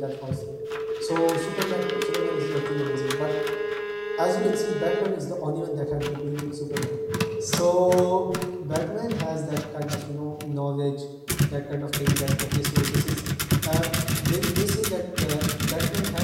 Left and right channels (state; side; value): identical; both; correlation 1.00